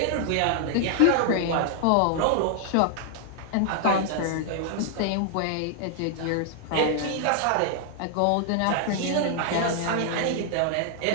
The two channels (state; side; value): different; both; correlation 0.00